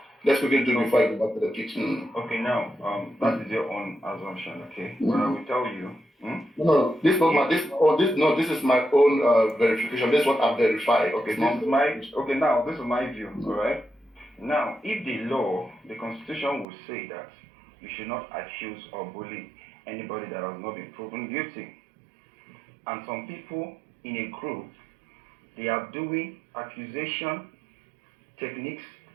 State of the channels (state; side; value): drops out; left; at 16.7 s